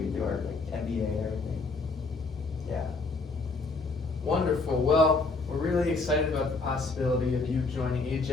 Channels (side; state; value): right; quieter; 3.7 dB